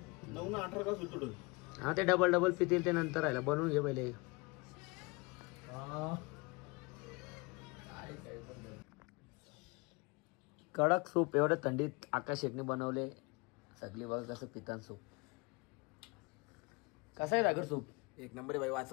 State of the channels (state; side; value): quieter; right; 27.0 dB